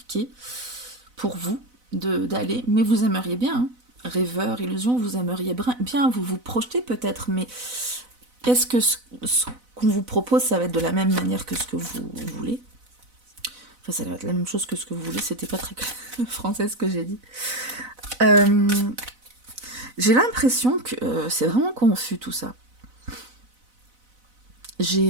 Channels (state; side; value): late; left; 4.0 ms